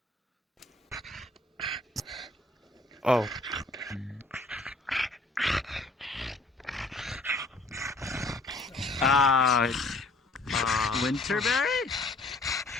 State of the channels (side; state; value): right; quieter; 3.1 dB